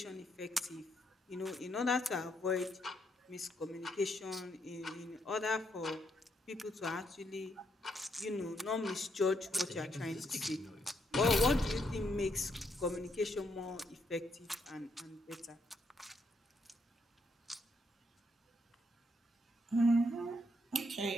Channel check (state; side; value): normal; both; correlation 0.76